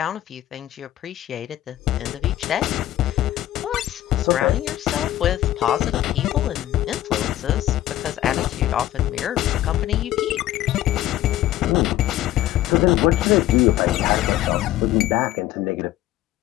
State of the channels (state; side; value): quieter; right; 14.1 dB